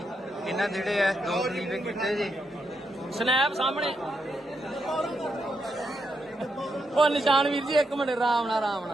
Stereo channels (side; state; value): both; normal; correlation 0.81